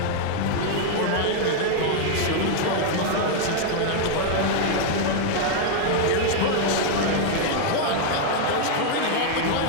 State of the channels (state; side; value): different; both; correlation 0.00